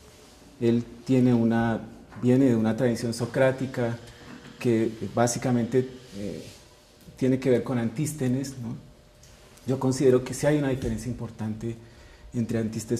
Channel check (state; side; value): identical; both; correlation 1.00